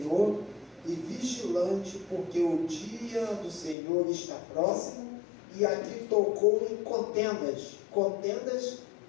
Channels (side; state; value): right; drops out; at 3.8 s